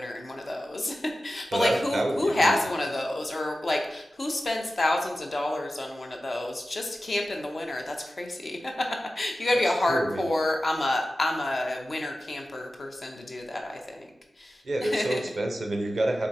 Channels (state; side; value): normal; both; correlation 0.94